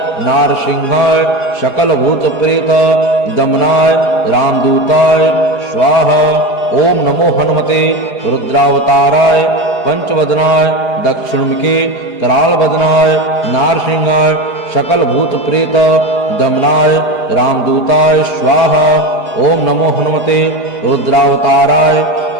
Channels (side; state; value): right; late; 4.8 ms